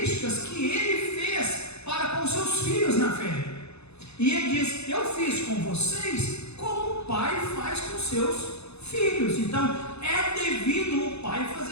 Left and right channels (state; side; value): late; right; 0.80 ms